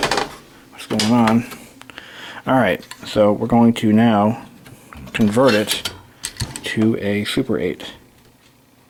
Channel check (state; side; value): identical; both; correlation 1.00